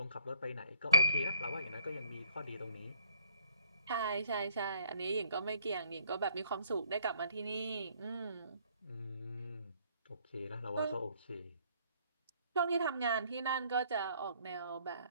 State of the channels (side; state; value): both; inverted; correlation -0.64